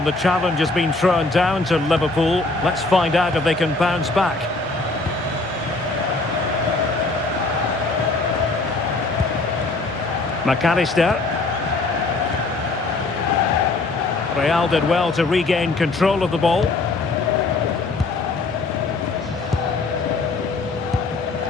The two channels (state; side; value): quieter; right; 3.4 dB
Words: the challenge has been thrown down to Liverpool. Let's find out if they can bounce back. McAllister. Real did well to regain control of the ball.